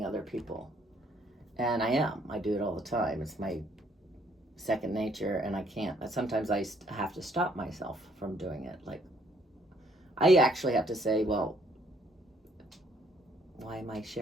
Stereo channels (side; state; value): both; normal; correlation 0.65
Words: other people. And I do it all the time. It's my second nature, and I can't. Sometimes I have to stop myself from doing it. Like, I actually have to say, well, why am I